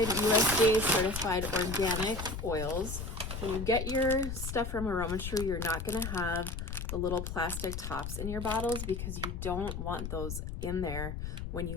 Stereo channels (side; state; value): left; noise; rumble, 5 dB below the sound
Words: USDA certified organic oils. When you get your stuff from AromaTru, you're not gonna have the little plastic tops in your bottles because you don't want those in there when